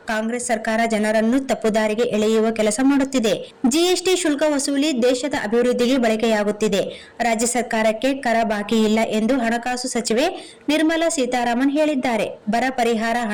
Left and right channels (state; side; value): identical; both; correlation 1.00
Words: ಕಾಂಗ್ರೆಸ್ ಸರ್ಕಾರ ಜನರನ್ನು ತಪ್ಪುದಾರಿಗೆ ಎಳೆಯುವ ಕೆಲಸ ಮಾಡುತ್ತಿದೆ. ಜಿಎಸ್ಟಿ ಶುಲ್ಕ ವಸೂಲಿ ದೇಶದ ಅಭಿವೃದ್ಧಿಗೆ ಬಳಕೆಯಾಗುತ್ತಿದೆ. ರಾಜ್ಯ ಸರ್ಕಾರಕ್ಕೆ ಕರ ಬಾಕಿ ಇಲ್ಲ ಎಂದು ಹಣಕಾಸು ಸಚಿವೆ ನಿರ್ಮಲಾ ಸೀತಾರಾಮನ್ ಹೇಳಿದ್ದಾರೆ. ಬರ ಪರಿಹಾರ